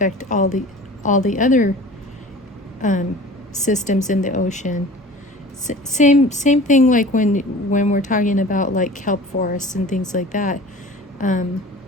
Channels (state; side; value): normal; both; correlation 0.41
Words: all the other systems in the ocean. Same thing like when we're talking about like kelp forests and things like that.